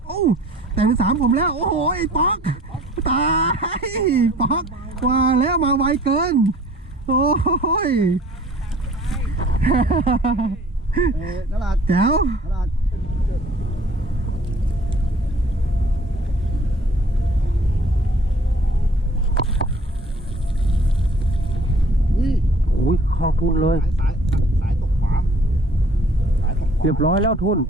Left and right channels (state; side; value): normal; both; correlation 0.53